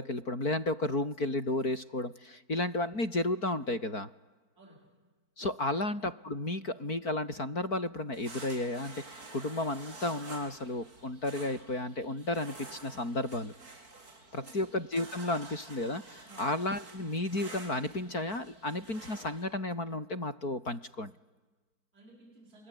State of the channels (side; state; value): right; late; 4.5 ms